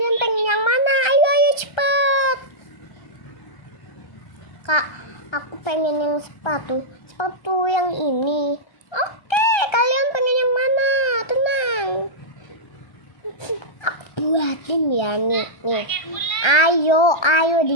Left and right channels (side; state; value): right; late; 1.3 ms